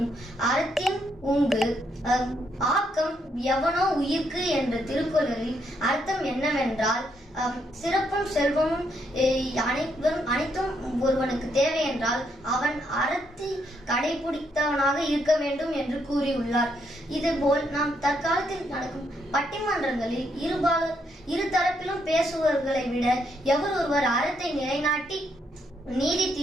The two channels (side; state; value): both; normal; correlation 0.76